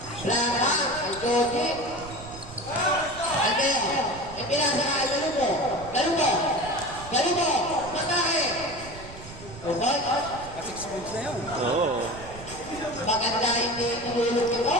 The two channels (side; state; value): right; noise; rumble, 15 dB below the sound